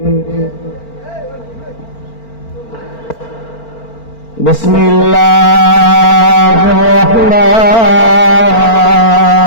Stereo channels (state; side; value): late; right; 4.4 ms